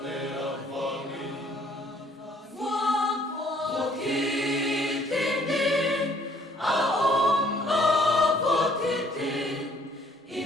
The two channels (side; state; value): both; normal; correlation 0.61